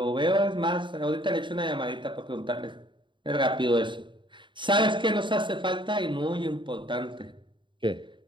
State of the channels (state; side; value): late; left; 0.23 ms